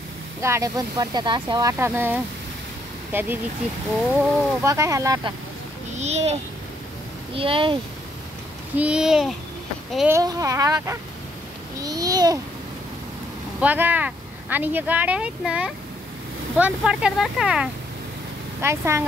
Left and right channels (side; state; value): both; normal; correlation 0.71